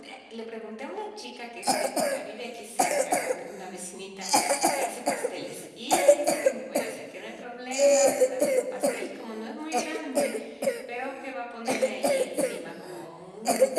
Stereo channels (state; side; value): identical; both; correlation 1.00